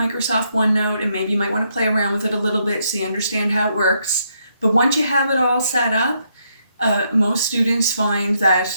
OneNote, and maybe you might want to play around with it a little bit so you understand how it works. But once you have it all set up, most students find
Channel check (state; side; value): inverted; both; correlation -0.75